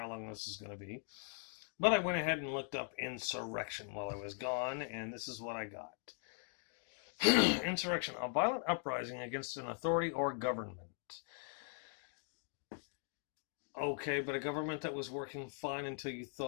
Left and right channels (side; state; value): right; silent; 51 dB below the other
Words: long this is going to be, but I went ahead and looked up insurrection while I was gone, and this is what I got. Insurrection: a violent uprising against an authority or government. Okay, but a government that was working fine until you